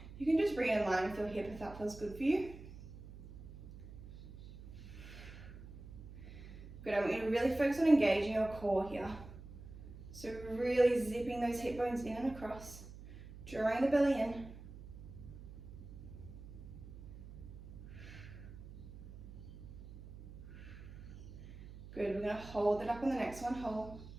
You can just bring it in line with your hip if that feels good for you. Good, I want you to really focus on engaging your core here. So really zipping those hip bones in and across, drawing the belly in. Good, we're going to hold it up on the next one, hold.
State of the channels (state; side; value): noise; right; hum, 14 dB below the sound